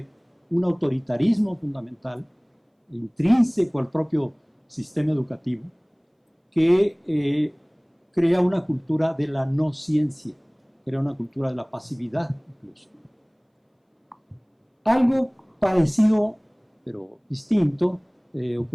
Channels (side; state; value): both; identical; correlation 1.00